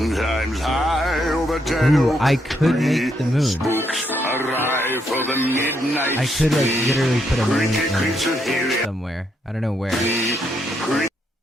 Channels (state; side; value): normal; both; correlation 0.77